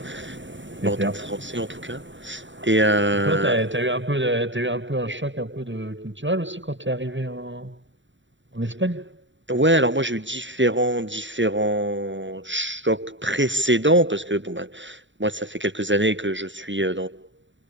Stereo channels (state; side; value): late; left; 0.54 ms